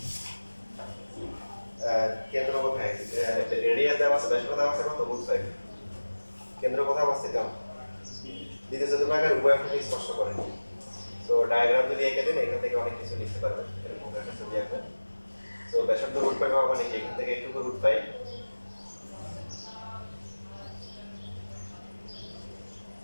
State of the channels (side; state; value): both; inverted; correlation -1.00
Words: কেন্দ্র কোথায়? রেডিয়াস দেওয়া আছে, ব্যাসার্ধ দেওয়া আছে কত? বুঝতে পারি। কেন্দ্র কোথায় অবস্থিত? দ্বিতীয় চতুর্ভাগের উভয় অক্ষকে স্পর্শ করে। তো ডায়াগ্রাম যদি এঁকে দেন এখান থেকে অনেক কিছু লিখতে পারবেন, এরকম একটা ছবি আঁকবেন। তো ব্যাসার্ধ রুট পাই পাওয়া মানে কি এখান থেকে একটু রুট পাই,